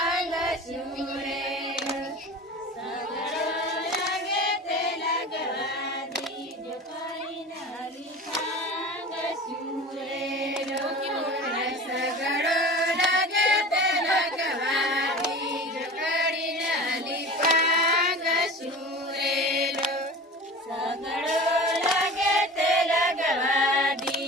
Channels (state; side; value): normal; both; correlation 0.36